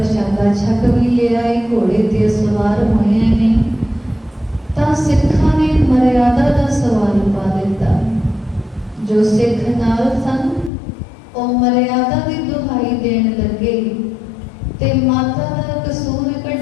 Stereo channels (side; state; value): right; drops out; at 10.7 s